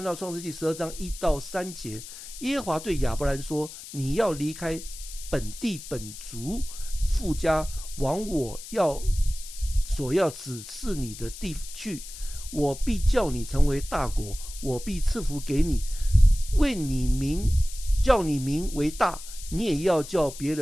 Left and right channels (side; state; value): left; noise; hiss, 13 dB below the sound